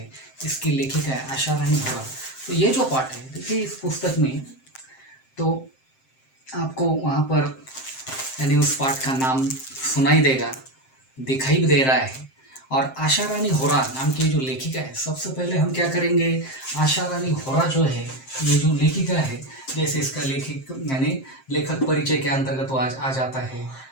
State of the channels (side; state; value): right; late; 7.6 ms